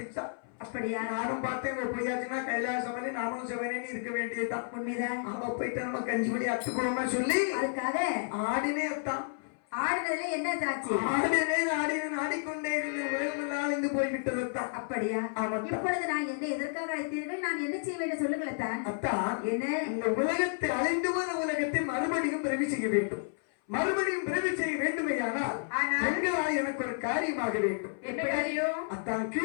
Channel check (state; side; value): silent; right; 57 dB below the other